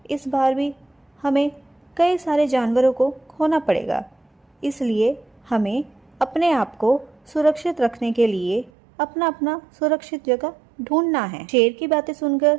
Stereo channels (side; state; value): left; drops out; at 8.7 s